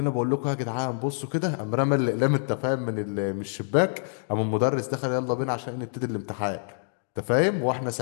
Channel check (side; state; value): right; silent; digital silence